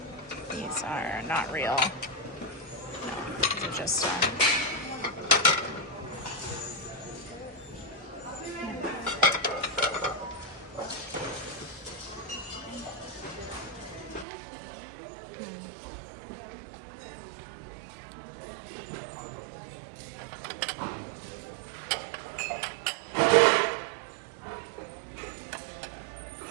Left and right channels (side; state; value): left; drops out; at 14.2 s